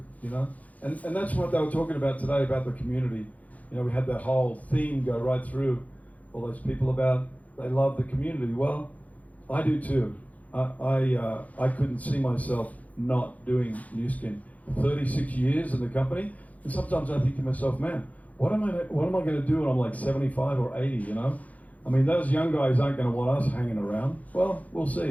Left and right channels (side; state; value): right; late; 0.073 ms